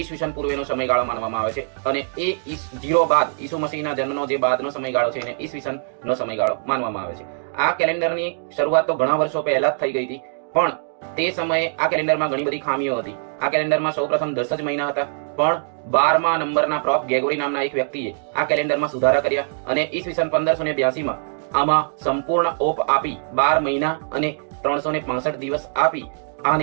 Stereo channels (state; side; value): silent; left; digital silence